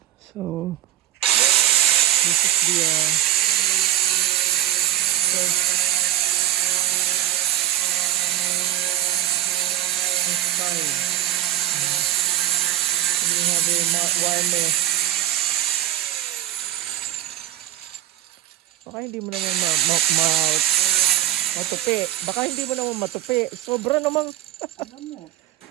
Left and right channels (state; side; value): quieter; left; 13.5 dB